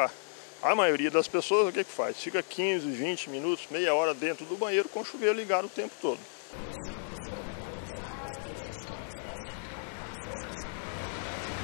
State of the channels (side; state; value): right; silent; digital silence